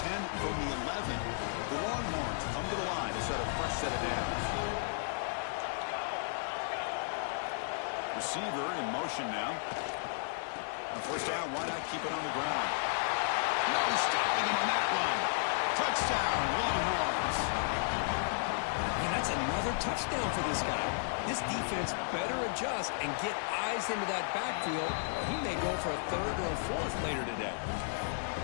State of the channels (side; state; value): right; silent; digital silence